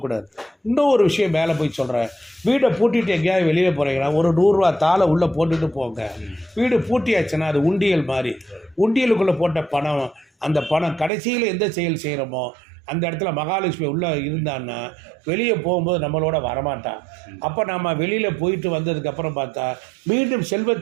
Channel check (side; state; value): left; drops out; at 11.1 s